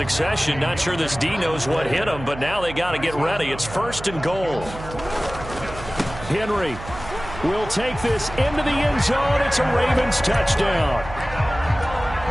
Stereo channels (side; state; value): right; noise; hum, 12 dB below the sound